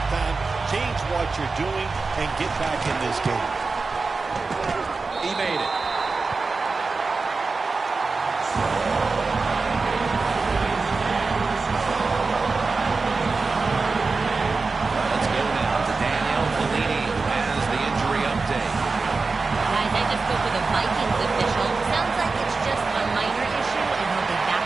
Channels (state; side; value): quieter; left; 4.1 dB